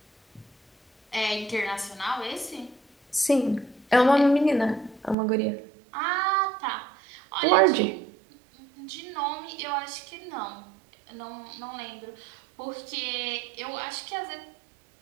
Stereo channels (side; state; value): left; drops out; at 5.2 s